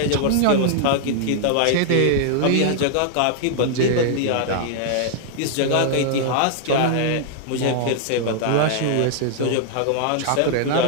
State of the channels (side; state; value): both; different; correlation -0.01